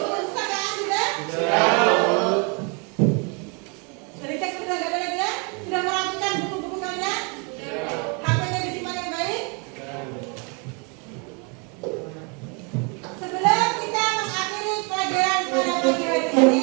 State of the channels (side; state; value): left; quieter; 33.8 dB